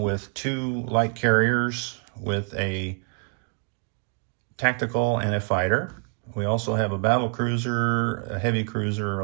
with 2 light carriers with a tactical and a fighter. We also have a battle cruiser, a heavy cruiser,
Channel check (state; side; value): quieter; left; 37.5 dB